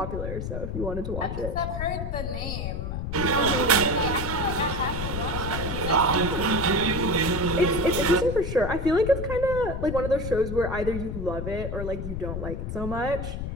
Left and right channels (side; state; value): left; noise; rumble, 4 dB below the sound